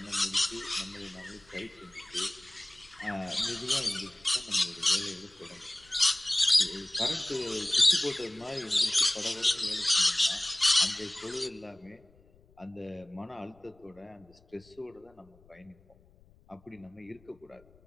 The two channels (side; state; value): left; noise; rumble, 29 dB below the sound